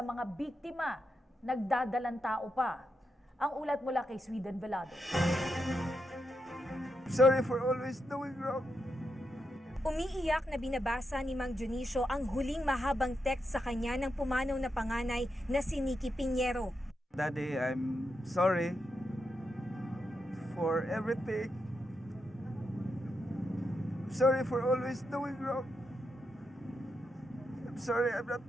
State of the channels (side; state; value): both; normal; correlation 0.84